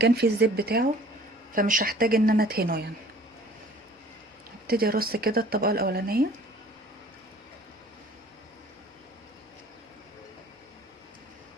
فيه الزيت بتاعه، فمش هحتاج ان انا ادهنه يعني. ابتدي ارص كده الطبقه الاولانيه.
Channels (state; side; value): normal; both; correlation 0.51